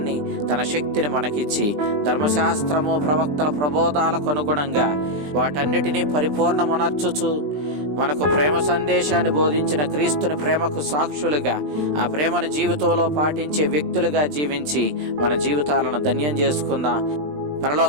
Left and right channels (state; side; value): late; left; 20 ms